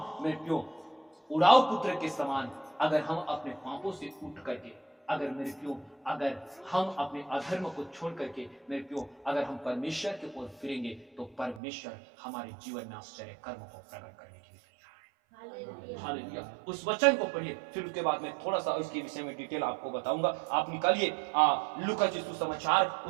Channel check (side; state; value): left; drops out; at 11.6 s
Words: मेरे क्यों उड़ाऊ पुत्र के समान अगर हम अपने पापों से उठ करके अगर हम अपने अधर्म को छोड़ करके मेरे क्यों अगर हम परमेश्वर के ओर फिरेंगे, तो परमेश्वर हमारे जीवन में आश्चर्य कर्म को प्रकट करने के लिए तैयार है। हालेलुया। उस वचन को पढ़िए, फिर उसके बाद मैं थोड़ा सा उसके विषय में डिटेल आपको बताऊंगा। आप निकालिए लूका सुसमाचार